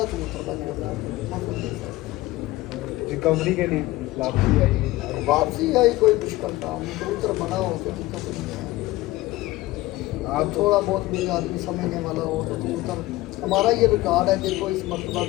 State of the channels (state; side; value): quieter; right; 18.2 dB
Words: कबूतरबाजी होती है मौसम के हिसाब से। रिकवरी के लिए वापसी आई, वापसी आई कोई मुश्किल काम नहीं, कबूतर बना हो तो दिक्कत नहीं है। आप थोड़ा बहुत भी आदमी समझने वाला हो तो कबूतर, हमारा ये रिकॉर्ड है। देखो इस मरतबा